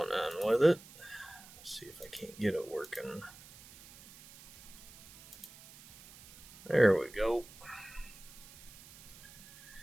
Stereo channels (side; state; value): right; noise; hiss, 19 dB below the sound